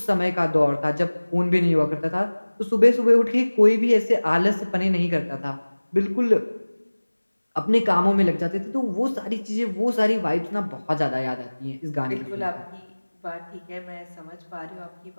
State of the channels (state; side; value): inverted; both; correlation -1.00